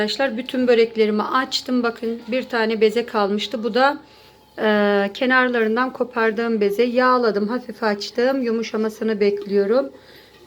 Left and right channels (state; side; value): identical; both; correlation 1.00